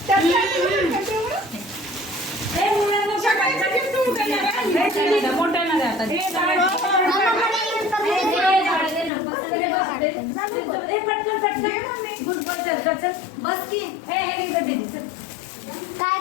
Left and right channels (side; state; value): right; drops out; at 9.1 s